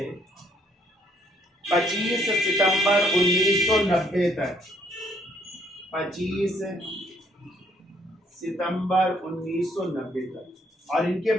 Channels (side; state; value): both; normal; correlation 0.67